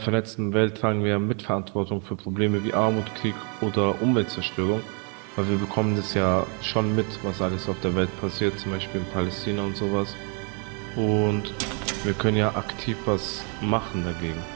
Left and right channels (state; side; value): quieter; left; 37.8 dB